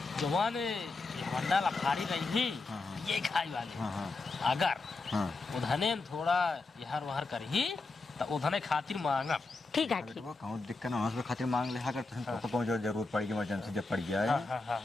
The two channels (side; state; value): right; quieter; 3.6 dB